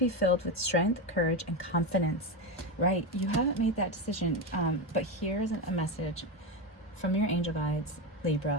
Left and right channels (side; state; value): both; normal; correlation 0.14